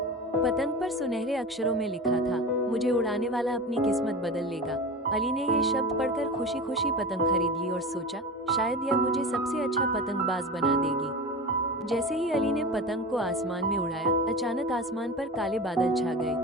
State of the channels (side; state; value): both; normal; correlation 0.29